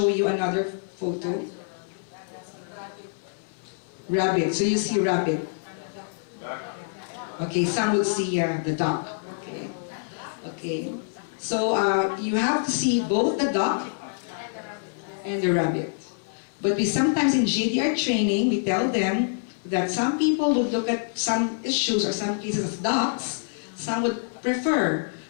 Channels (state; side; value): silent; right; 61 dB below the other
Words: you another photo. Rabbit. So you see rabbit. Okay, some will see the duck. Okay. Okay. So you have to see both the duck and the rabbit. But we sometimes in JDR training, we tell them that some people would look at some issues or some cases as ducks, some would prefer